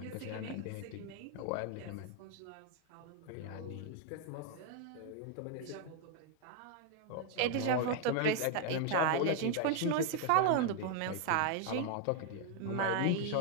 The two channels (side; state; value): both; different; correlation 0.00